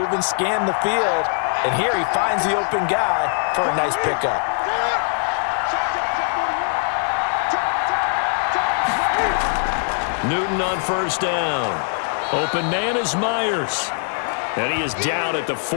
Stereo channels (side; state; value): right; silent; 56 dB below the other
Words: scan the field. And here he finds the open guy for a nice pickup. Newton on 1st down. Open man is Myers. And he is down at the